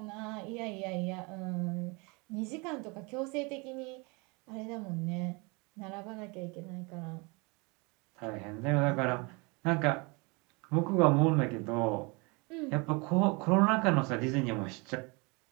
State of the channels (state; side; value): quieter; left; 29.0 dB